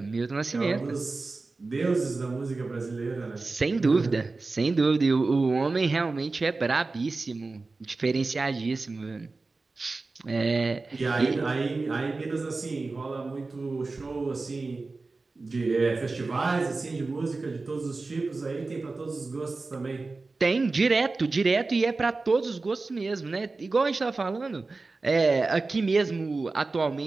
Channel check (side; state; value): left; quieter; 3.7 dB